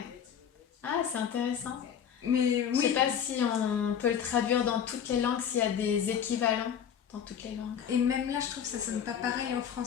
Ah, c'est intéressant. Mais Je sais oui, pas si on peut le traduire dans toutes les langues, s'il y a des équivalents dans toutes les langues. et même là, je trouve que ça sonne pas pareil en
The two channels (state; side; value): quieter; right; 8.4 dB